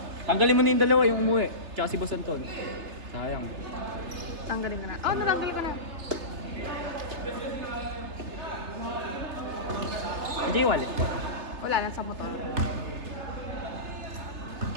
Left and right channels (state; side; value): late; left; 3.3 ms